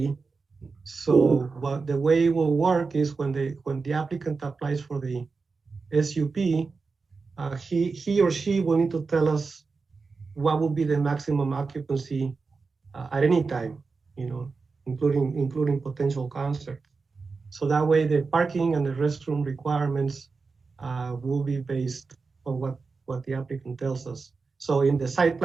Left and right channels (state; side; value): quieter; left; 4.5 dB